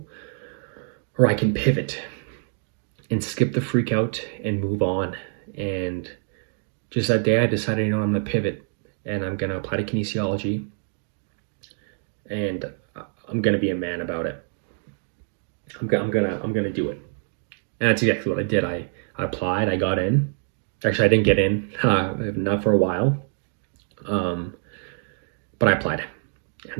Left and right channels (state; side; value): silent; left; 58 dB below the other